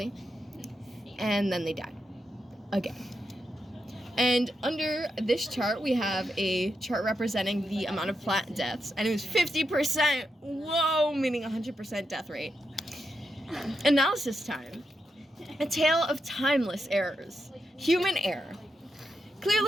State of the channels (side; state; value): both; normal; correlation 0.85